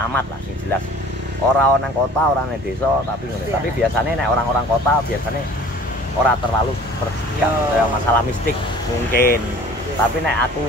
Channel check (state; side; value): normal; both; correlation 0.48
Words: lah, yang jelas. Orang nang kota, orang nang desa, tapi tapi biasanya nek orang-orang kota biasanya orang terlalu bersikap kayak masalah mistik mungkin. Tapi nek aku